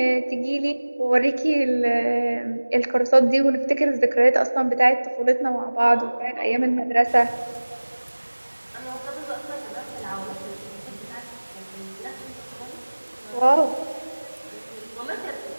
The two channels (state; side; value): inverted; both; correlation -1.00